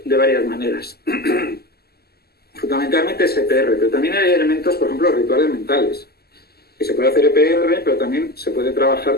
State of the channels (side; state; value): right; late; 0.46 ms